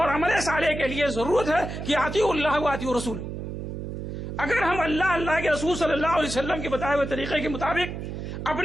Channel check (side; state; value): right; noise; hum, 6 dB below the sound